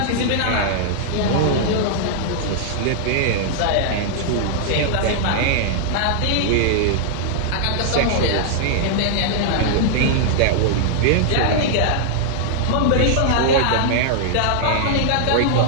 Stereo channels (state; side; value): different; both; correlation -0.01